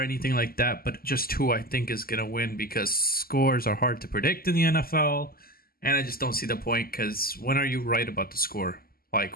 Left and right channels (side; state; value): right; late; 0.43 ms